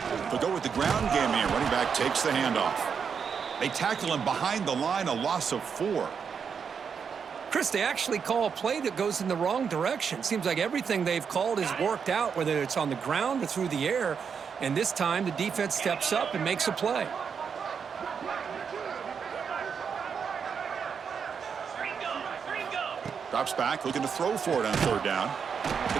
They'll go with the ground game here. Running back takes the handoff. They tackle him behind the line, a loss of 4. Chris, they actually call a play that goes in the wrong direction. Seems like everything they've called has worked out, whether it's on the ground or through the air. And this time, the defense steps up and makes a play. Drops back, looking to throw for it on 3rd down.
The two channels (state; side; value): quieter; left; 6.5 dB